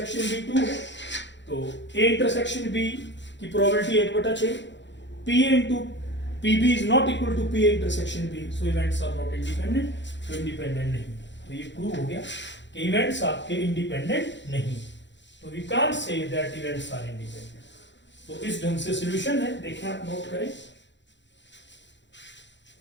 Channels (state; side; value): late; right; 0.52 ms